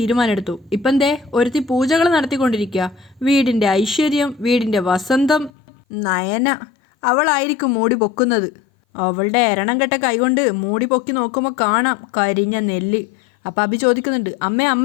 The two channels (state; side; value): drops out; right; at 5.5 s